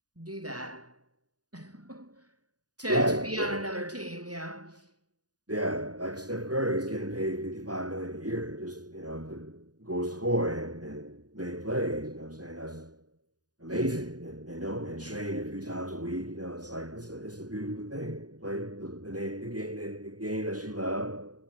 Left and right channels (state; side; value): late; left; 0.68 ms